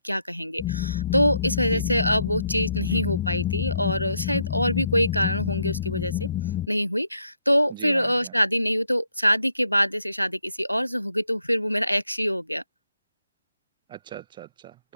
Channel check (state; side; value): inverted; both; correlation -0.75